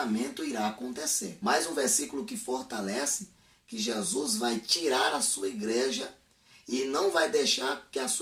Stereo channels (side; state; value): both; identical; correlation 1.00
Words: irá acontecer. Mais um versículo que fortalece que Jesus vai tirar a sua igreja e não vai deixar que a